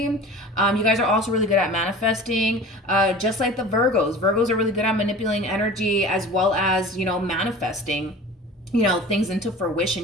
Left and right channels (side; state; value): both; normal; correlation 0.39